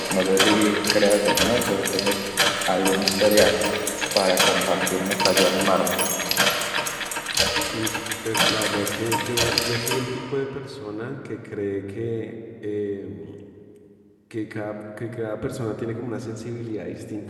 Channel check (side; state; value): both; identical; correlation 1.00